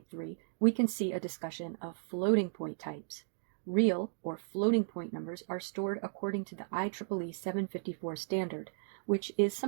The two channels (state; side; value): silent; left; digital silence